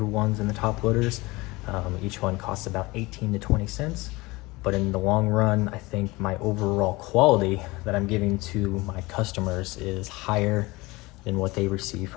ones and the top loaders. Each one costs about 18 to 20 cents. But in the long run, I think my overall quality that I'm giving to my customers is higher than what they receive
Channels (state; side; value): quieter; right; 22.2 dB